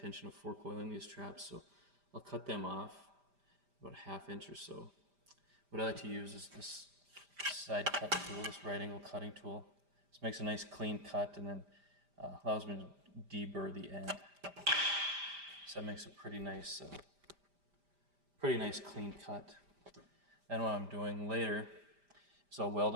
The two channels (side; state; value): left; late; 5.0 ms